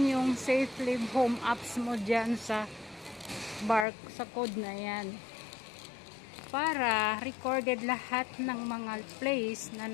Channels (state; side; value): drops out; right; at 3.9 s